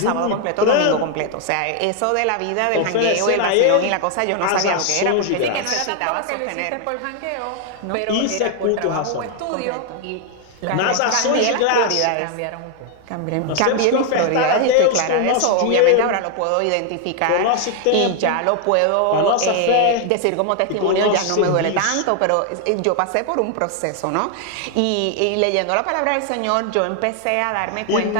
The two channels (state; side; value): different; both; correlation 0.00